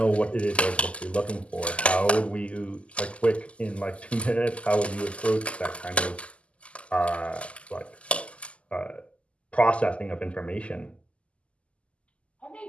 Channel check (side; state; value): right; late; 0.058 ms